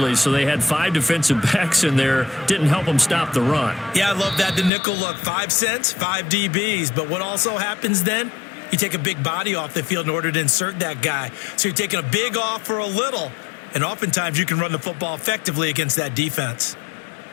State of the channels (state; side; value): drops out; right; at 4.7 s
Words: so they had 5 defensive backs in there. Didn't help them stop the run. Yeah, I love that. The nickel look, 5 cents, 5 DBs. But what also happens then? You take a big body off the field in order to insert that guy. So you're taking a big off for a little. And oftentimes you can run the football effectively against that defense.